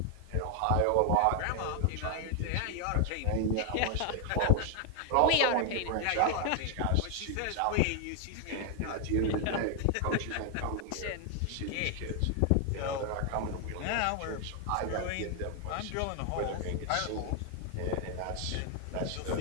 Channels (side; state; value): both; different; correlation 0.00